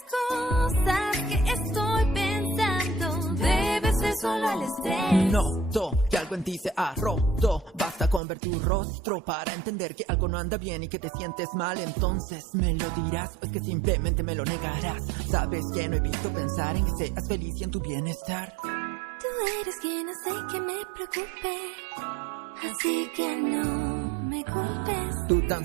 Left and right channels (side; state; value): left; drops out; at 8.2 s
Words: cosas que estoy pensando, debe ser solo el estrés. Noto que algo en ti se ha roto. Basta con ver tu rostro para entender que algo no anda bien y que te sientes mal. Entonces me lo dirás o es que simplemente me lo negarás. Sabes que no he visto pensar en que seas feliz y en tu bienestar. Tú eres quien hace que me preocupe, así que no me culpes. Tú